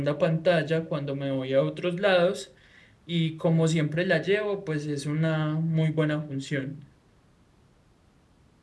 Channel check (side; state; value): both; identical; correlation 1.00